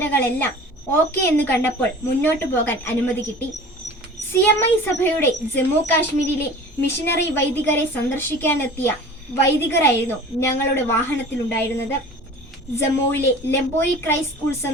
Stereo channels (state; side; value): normal; both; correlation 0.41